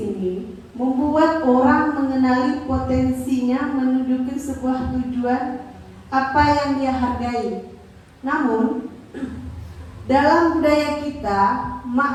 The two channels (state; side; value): identical; both; correlation 1.00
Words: membuat orang mengenali potensinya menuju ke sebuah tujuan apa yang dia hargai. Namun dalam budaya kita,